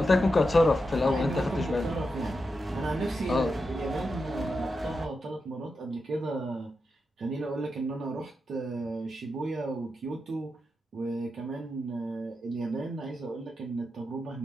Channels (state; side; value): normal; both; correlation 0.88